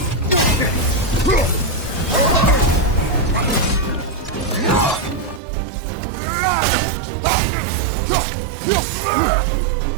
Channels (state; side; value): drops out; left; at 5.4 s